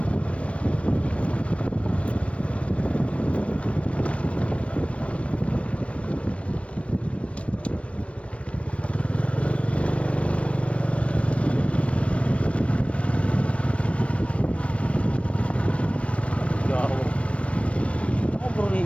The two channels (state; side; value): late; right; 0.062 ms